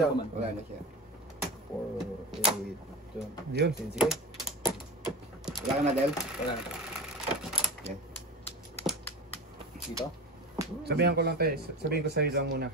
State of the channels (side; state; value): both; normal; correlation 0.28